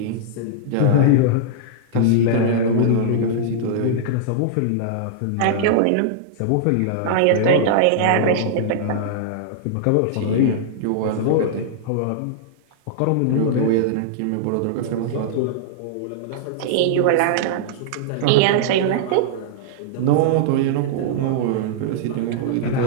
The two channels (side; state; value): both; different; correlation -0.02